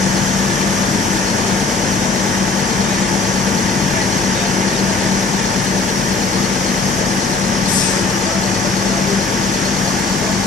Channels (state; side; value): quieter; right; 3.7 dB